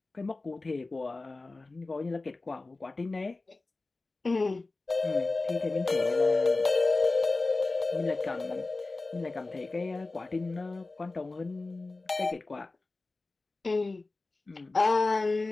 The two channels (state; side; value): quieter; right; 3.4 dB